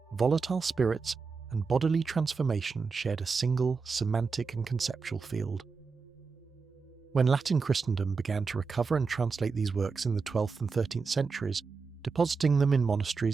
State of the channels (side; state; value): left; quieter; 4.9 dB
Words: volatile spirits, and bodily transformation shared a single semantic and conceptual field. When Latin Christendom began to recover and translate these works in the 12th and 13th centuries, depositing them in